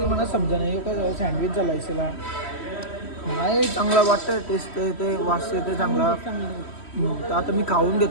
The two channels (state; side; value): late; right; 3.1 ms